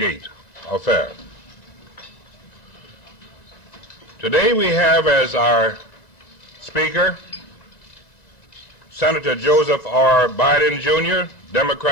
affair. Today we have as our speaker Senator Joseph R. Biden, Jr.,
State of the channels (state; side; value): late; right; 1.7 ms